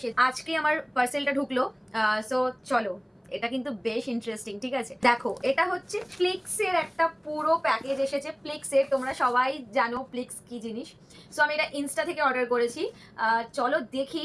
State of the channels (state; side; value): identical; both; correlation 1.00